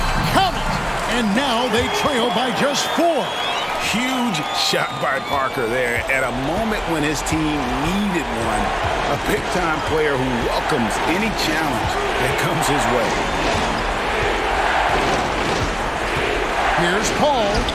Count it! And now they trail by just 4. Huge shot by Parker there at a moment when his team needed one. A big-time player who welcomes any challenge that comes his way. Here's Paul.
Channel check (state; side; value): identical; both; correlation 1.00